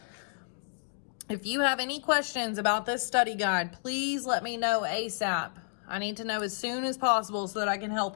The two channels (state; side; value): silent; right; digital silence